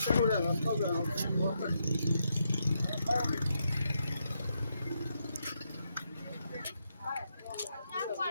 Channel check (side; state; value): both; inverted; correlation -0.81